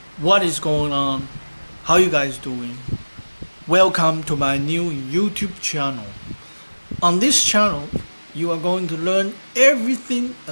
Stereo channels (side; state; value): both; inverted; correlation -1.00